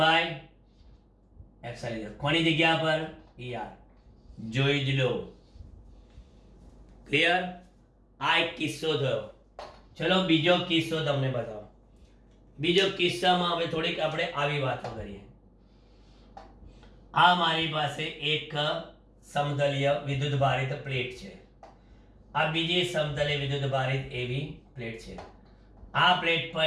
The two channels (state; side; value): identical; both; correlation 1.00